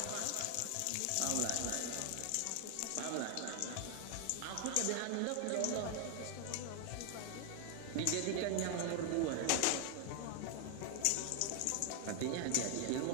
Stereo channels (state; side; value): different; both; correlation 0.00